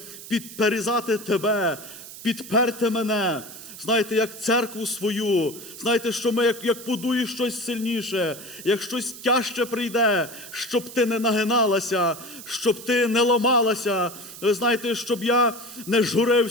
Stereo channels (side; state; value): right; noise; hiss, 14 dB below the sound